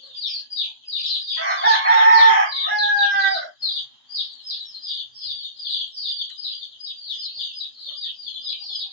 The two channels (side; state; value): both; inverted; correlation -0.45